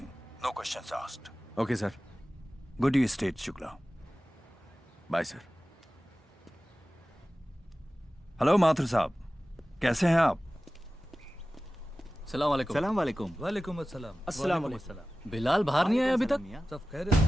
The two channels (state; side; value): normal; both; correlation 0.96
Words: no questions asked. Okay sir. Good you state Shukla. Bye sir. Hello Mathur sahab, कैसे हैं आप? सलाम वालेकुम। सलाम वालेकुम। वालेकुम अस्सलाम। अस्सलाम वालेकुम वालेकुम। अस्सलाम। बिलाल बाहर नहीं आया अभी तक? सब कह रहे